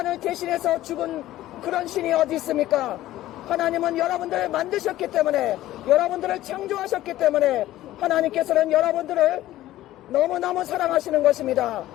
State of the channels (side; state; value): right; quieter; 14.9 dB